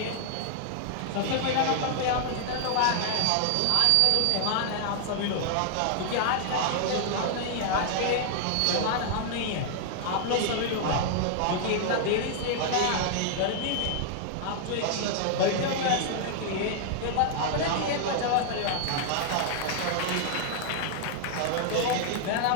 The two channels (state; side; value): different; both; correlation 0.00